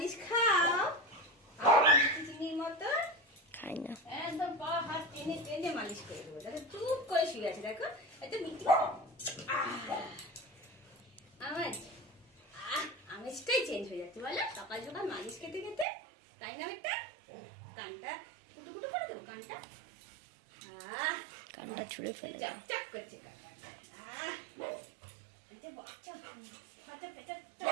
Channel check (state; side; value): drops out; left; at 15.9 s